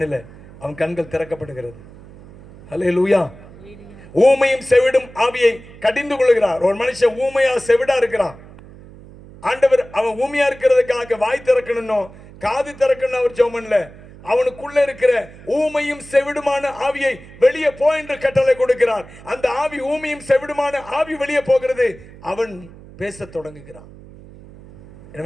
அவன் கண்கள் திறக்கப்படுகிறது. அல்லேலூயா. ஊமையும் செவிடும் ஆவியை கடிந்து கொள்கிறார். ஒரு மனுஷன் ஊமையா செவிடா இருக்கிறான். ஆண்டவர் அவன் ஊமையா இருக்கிறதுக்காக வாய் திறக்கணும், காது திறக்கணும் அவர் ஜெபம் பண்ணல. அவனுக்குள்ள இருக்கிற ஊமையும் செவிடுமான ஆவியை வெளியே போ என்று கட்டளை கொடுக்கிறார். அந்த ஆவி, ஊமையும் செவிடுமான ஆவி வெளியே போகிறது. அவன் பேச தொடங்குகிறான்.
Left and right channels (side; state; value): right; noise; hum, 20 dB below the sound